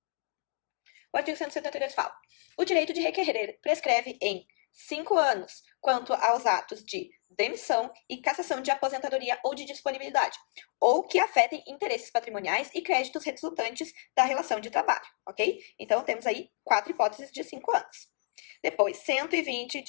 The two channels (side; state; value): right; silent; 58 dB below the other